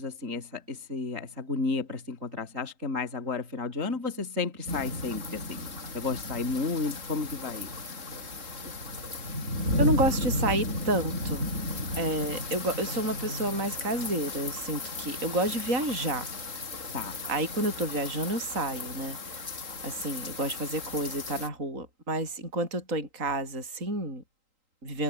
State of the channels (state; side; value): late; left; 3.8 ms